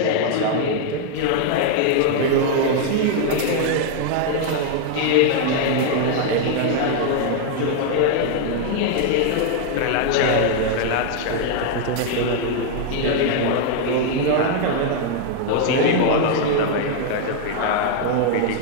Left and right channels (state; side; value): different; both; correlation 0.00